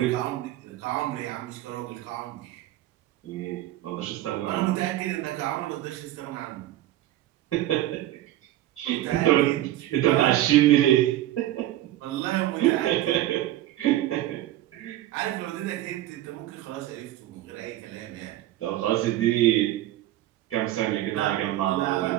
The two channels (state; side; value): quieter; left; 14.4 dB